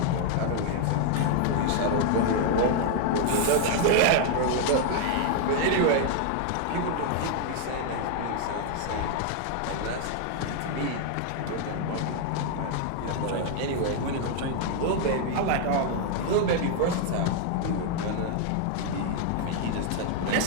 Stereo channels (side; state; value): both; different; correlation 0.00